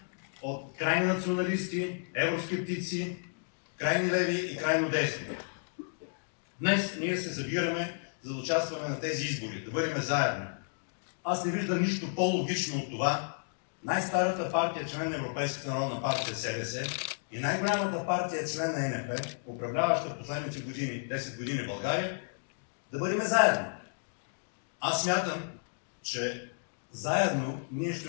от крайни националисти, евроскептици, крайни леви и крайно десни. Днес ние се събираме, за да участваме на тези избори, да бъдем заедно. Аз не виждам нищо по-логично от това най-старата партия, член на Европейската народна партия СДС, и най-голямата партия, член на ЕНП, управляваща последните години, 10 години в България, да бъдем заедно. Аз смятам, че заедно ние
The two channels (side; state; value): right; silent; digital silence